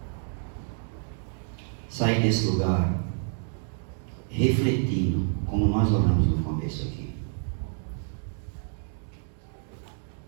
sair desse lugar refletindo, como nós oramos no começo aqui,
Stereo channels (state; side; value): silent; left; 59 dB below the other